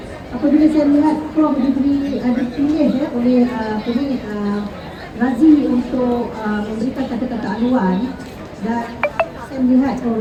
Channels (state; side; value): identical; both; correlation 1.00